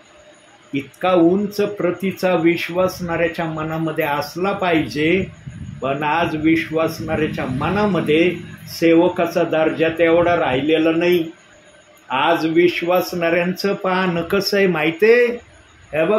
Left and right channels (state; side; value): identical; both; correlation 1.00